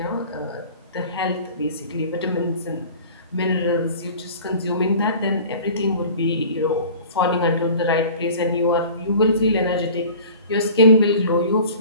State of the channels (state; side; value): inverted; both; correlation -0.44